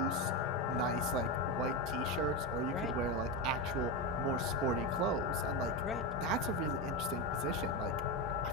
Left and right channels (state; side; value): normal; both; correlation 0.14